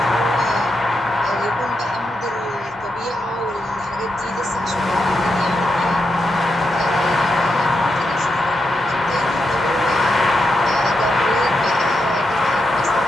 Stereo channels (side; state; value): both; normal; correlation 0.84